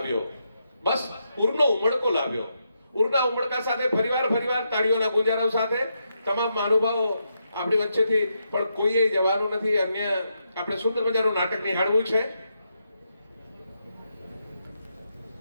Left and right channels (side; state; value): both; inverted; correlation -0.82